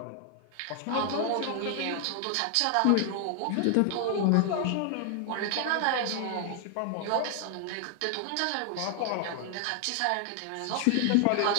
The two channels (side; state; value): both; different; correlation 0.00